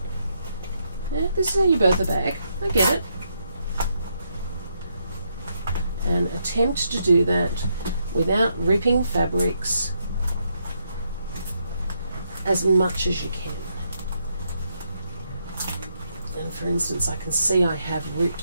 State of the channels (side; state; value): both; inverted; correlation -0.78